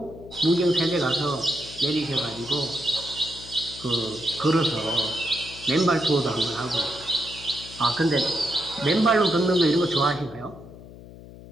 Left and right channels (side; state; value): left; noise; hum, 17 dB below the sound